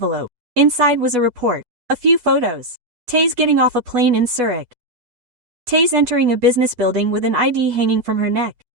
Inside was a report. A few photos. Taze getting off a plane in Zurich. Taze entering a business building with an ID hanging from her neck.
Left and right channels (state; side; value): late; left; 8.2 ms